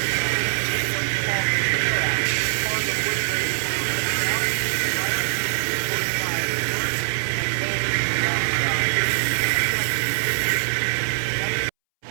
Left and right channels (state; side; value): silent; left; 63 dB below the other